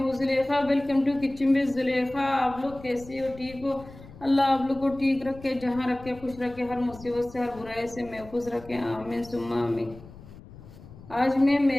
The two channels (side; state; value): left; noise; rumble, 18 dB below the sound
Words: Zulekha. Welcome to kitchen with Zulekha. आप लोग कैसे हो? ठीक हो? अल्लाह आप लोग को ठीक रखे, जहाँ रखे खुश रखे, हर मुसीबत से हर बुराई से महफूज रखे। आमीन सुम्मा आमीन। आज मैं